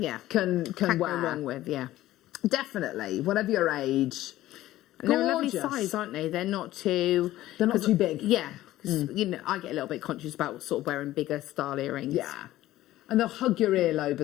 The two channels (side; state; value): right; quieter; 15.1 dB